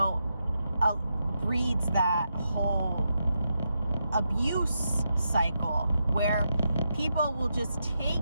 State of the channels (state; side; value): inverted; both; correlation -0.84